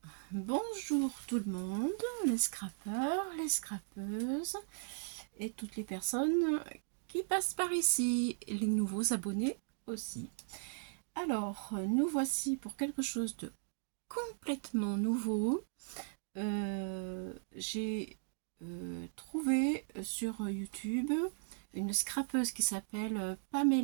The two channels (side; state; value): left; silent; digital silence